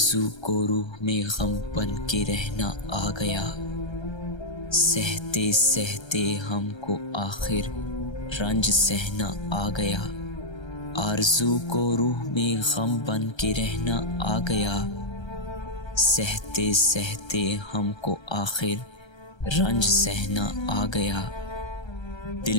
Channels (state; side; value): late; right; 1.3 ms